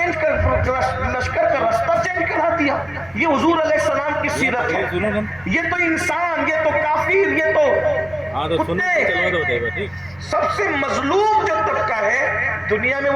کر، لشکر کا رستہ چینج کرا دیا۔ یہ حضور علیہ السلام کی سیرت ہے۔ یہ تو انسان، یہ تو کافر، یہ تو کتے، سب سے مظلوم جو طبقہ ہے دنیا میں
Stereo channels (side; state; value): right; noise; rumble, 26 dB below the sound